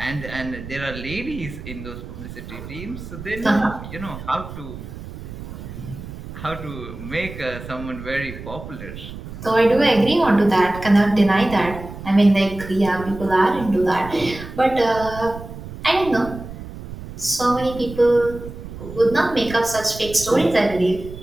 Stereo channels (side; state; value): right; noise; rumble, 12 dB below the sound